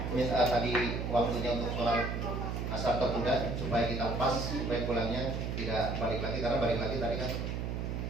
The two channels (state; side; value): noise; right; hum, 2 dB below the sound